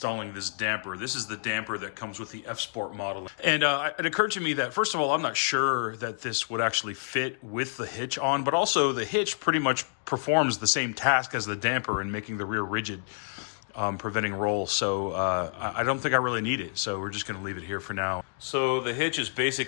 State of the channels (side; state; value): right; silent; digital silence